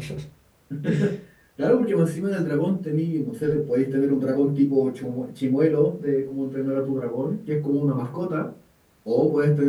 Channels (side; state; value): both; identical; correlation 1.00